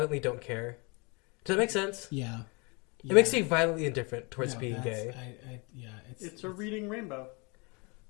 don't care. Does that make sense? Yeah. It makes me violently indifferent towards being gay. It's a reading rainbow.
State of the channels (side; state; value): right; quieter; 30.5 dB